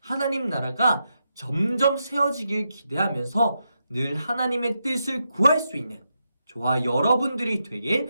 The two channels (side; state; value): both; inverted; correlation -0.85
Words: 나라가 점점 세워지길 기대하면서 늘 하나님의 뜻을 구할 수 있는 저와 여러분들이 되길